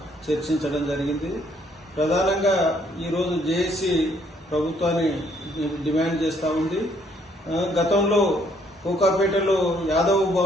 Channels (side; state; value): both; normal; correlation 0.67